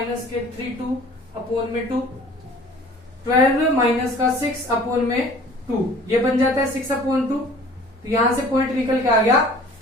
3/2/2, 12 - 6/2, ये बन जाता है 6/2। तो यहां से पॉइंट निकल के आ गया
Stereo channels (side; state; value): both; normal; correlation 0.48